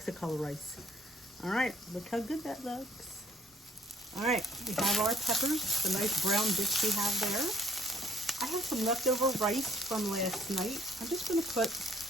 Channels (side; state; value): both; normal; correlation 0.62